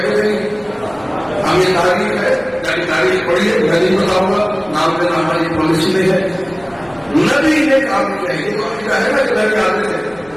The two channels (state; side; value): noise; left; rumble, 27 dB below the sound